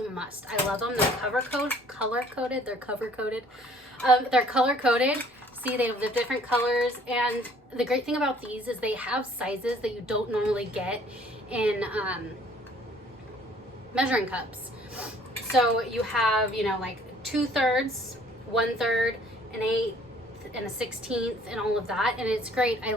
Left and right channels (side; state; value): both; normal; correlation 0.57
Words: must. I love them. They're color-coded. They're cover-coated. They're color-coded. See, they have the different colors. And the great thing about these is they have sizes that you don't normally get in measuring cups. So you have, you know, like 2/3, 1/3, an 1/8, and a 1/16, and all of that. And it's great. I